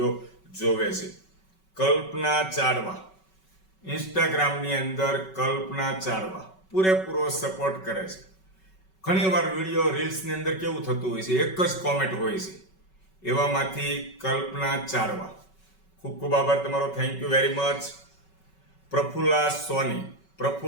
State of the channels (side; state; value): right; late; 5.3 ms